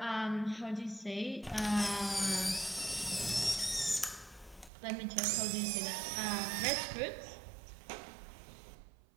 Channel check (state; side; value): drops out; left; at 4.7 s